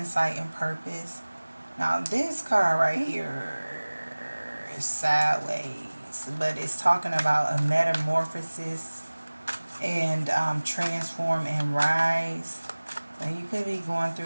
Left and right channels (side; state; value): both; inverted; correlation -1.00